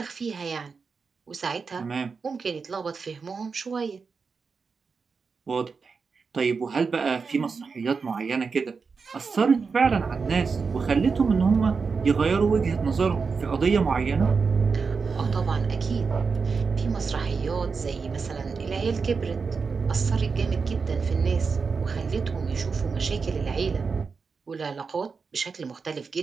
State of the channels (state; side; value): quieter; left; 5.1 dB